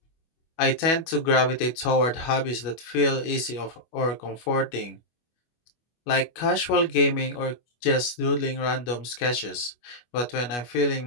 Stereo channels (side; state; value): right; late; 25 ms